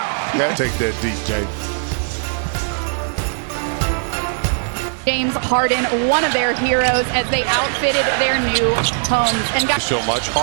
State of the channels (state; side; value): silent; left; digital silence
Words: Take that, DJ. James Harden, one of their heroes, as they outfitted their new homes and got So much.